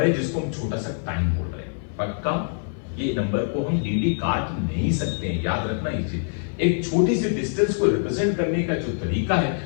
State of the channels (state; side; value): silent; right; 62 dB below the other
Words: है जिसको हम छोटा सा टाइम बोल रहे हैं। पक्का? ये नंबर को हम dd काट नहीं सकते हैं, याद रखना ये चीज। एक छोटी सी डिस्टेंस को रिप्रेजेंट करने का जो तरीका है